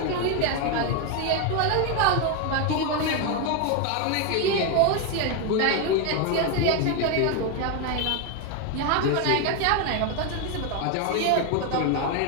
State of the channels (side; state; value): both; different; correlation 0.01